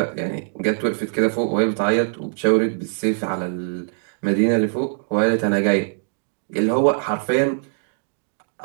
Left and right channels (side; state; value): left; silent; digital silence